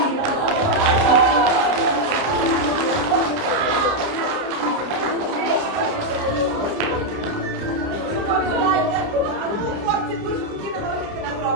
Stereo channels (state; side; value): late; left; 29 ms